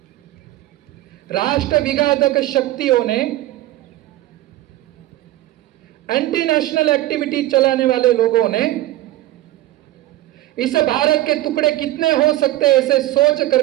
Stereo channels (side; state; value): left; quieter; 15.8 dB